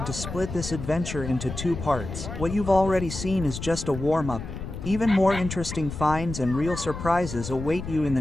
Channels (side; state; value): left; noise; rumble, 8 dB below the sound